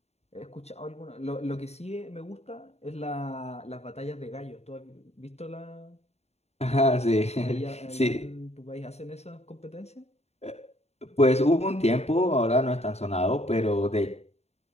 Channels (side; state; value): right; late; 0.31 ms